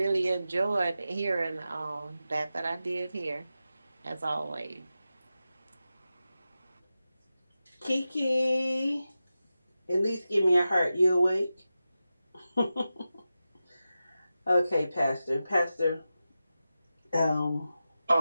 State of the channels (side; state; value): both; inverted; correlation -0.92